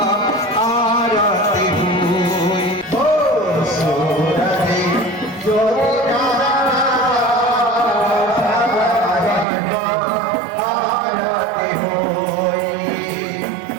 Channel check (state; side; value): drops out; left; at 9.5 s